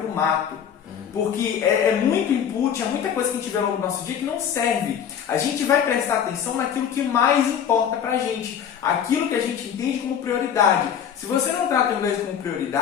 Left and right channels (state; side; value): quieter; right; 8.4 dB